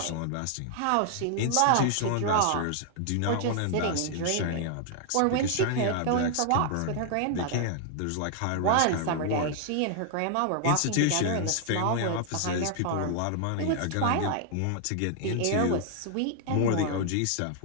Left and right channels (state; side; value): different; both; correlation 0.00